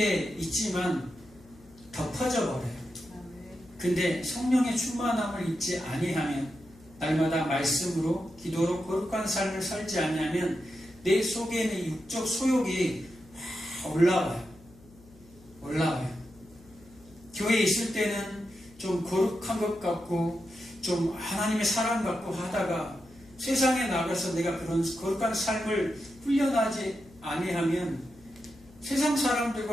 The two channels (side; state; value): left; noise; hum, 25 dB below the sound